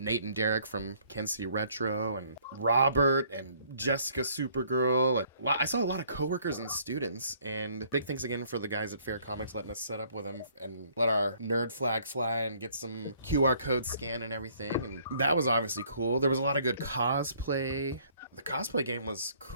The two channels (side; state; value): both; inverted; correlation -0.62